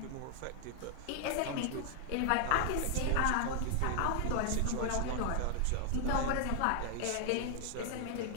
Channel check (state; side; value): different; both; correlation 0.00